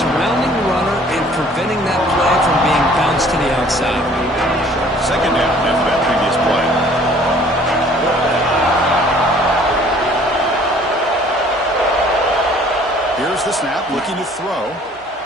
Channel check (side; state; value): both; normal; correlation 0.55